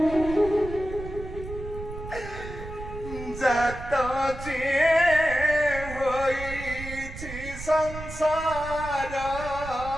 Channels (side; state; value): right; noise; rumble, 11 dB below the sound